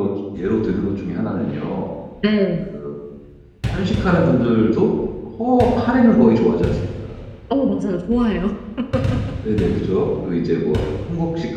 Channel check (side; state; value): both; identical; correlation 1.00